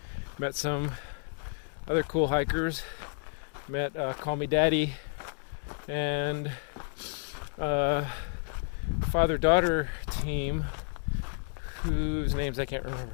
Met some other cool hikers. Met Call Me Daddy and father-daughter team whose names I can't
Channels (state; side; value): silent; right; digital silence